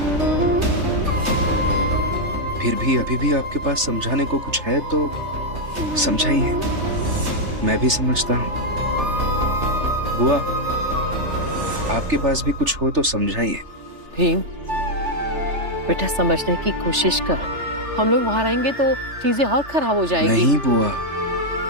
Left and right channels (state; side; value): late; left; 3.3 ms